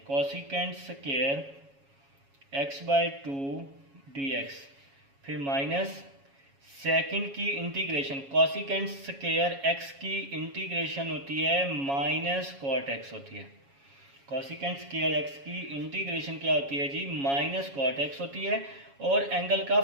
cosecant square x by 2 d x, फिर माइनस सेकंड की इंटीग्रेशन कॉसिकेंट स्क्वायर एक्स की इंटीग्रेशन होती है माइनस कॉट एक्स होती है। कॉसिकेंट स्क्वायर एक्स की इंटीग्रेशन क्या होती है जी, माइनस कॉट एक्स होती है, और एंगल का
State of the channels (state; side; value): late; left; 7.2 ms